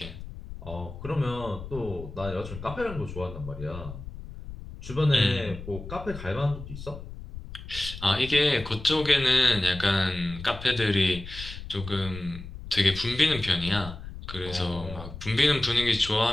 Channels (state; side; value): noise; left; rumble, 12 dB below the sound